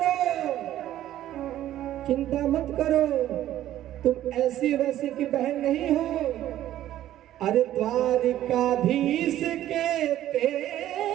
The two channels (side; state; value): left; quieter; 12.9 dB